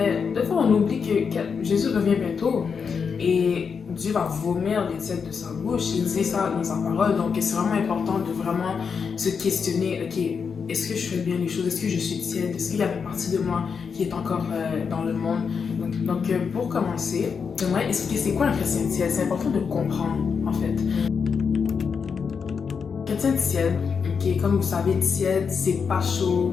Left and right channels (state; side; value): quieter; right; 6.0 dB